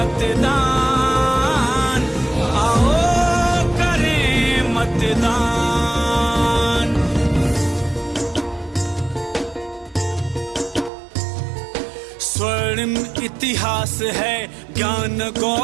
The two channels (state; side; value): drops out; left; at 10.9 s